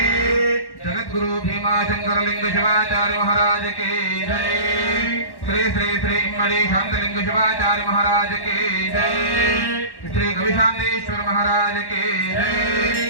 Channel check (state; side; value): late; right; 1.1 ms